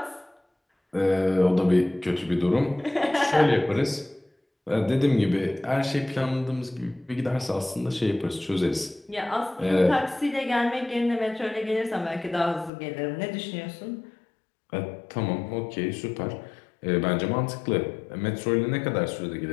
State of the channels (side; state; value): right; drops out; at 12.7 s